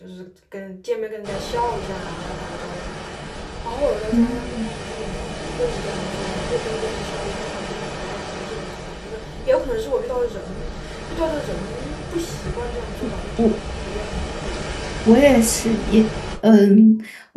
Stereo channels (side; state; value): both; identical; correlation 1.00